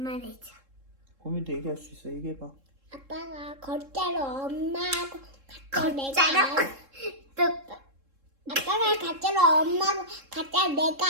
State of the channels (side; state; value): left; late; 3.7 ms